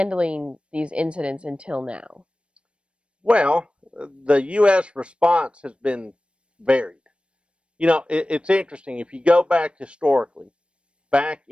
these incidents until now? Well, the U.S. response has been varied. You know, it's interesting. If you go back historically, back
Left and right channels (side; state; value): left; late; 0.058 ms